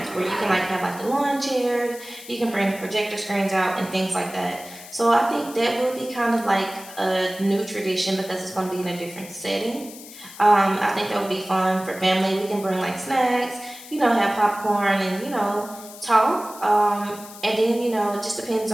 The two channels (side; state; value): left; noise; hiss, 16 dB below the sound